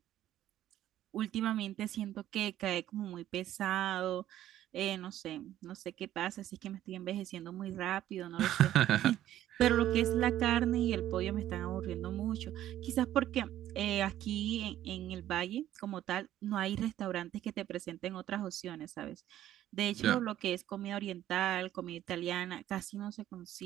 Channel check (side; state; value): left; quieter; 12.7 dB